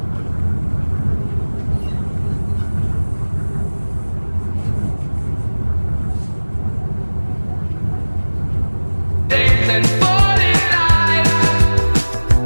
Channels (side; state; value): both; inverted; correlation -1.00